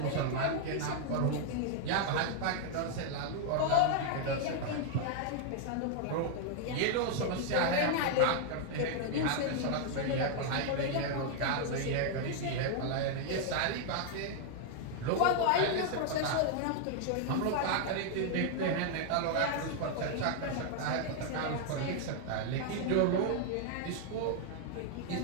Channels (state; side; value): different; both; correlation 0.00